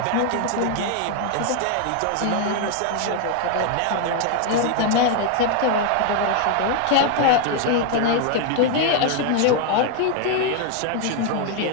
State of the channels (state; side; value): different; both; correlation 0.00